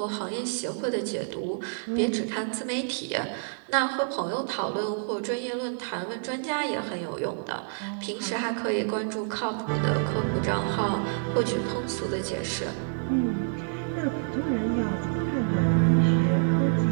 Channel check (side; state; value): left; silent; digital silence